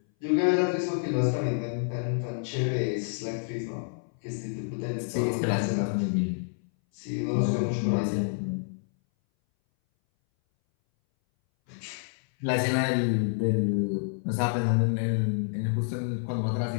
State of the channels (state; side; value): silent; right; 59 dB below the other